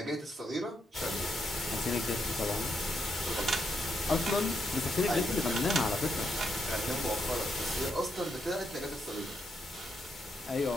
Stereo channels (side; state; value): both; normal; correlation 0.80